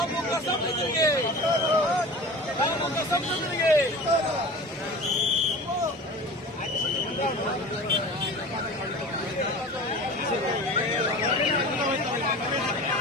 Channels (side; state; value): both; normal; correlation 0.36